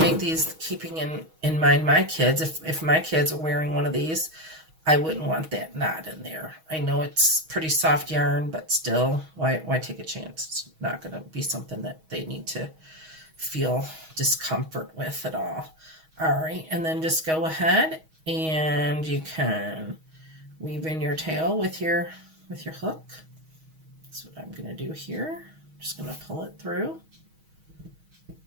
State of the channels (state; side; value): late; left; 6.3 ms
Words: these keeping in mind my kids. If my kids are wearing one of these, I wouldn't want that knot in there. I know it's pretty soft yarn, but still, why take a chance? It's not going to be something that they need to feel discomfort with at all. All right, and then just go ahead and you can weave in your tail with your hook. That's what I'm going to do here. Just going to pull it through.